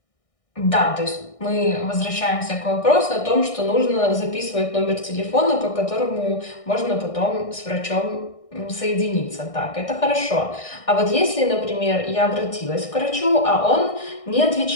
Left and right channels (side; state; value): right; late; 1.6 ms